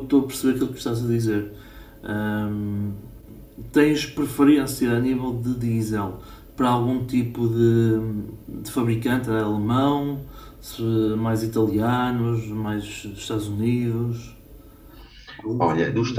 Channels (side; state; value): both; identical; correlation 1.00